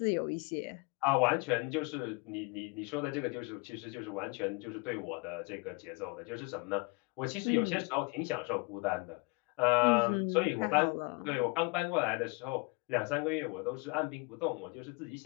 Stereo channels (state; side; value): quieter; right; 28.9 dB